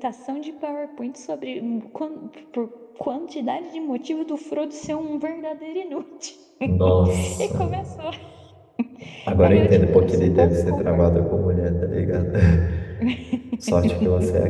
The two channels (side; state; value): both; identical; correlation 1.00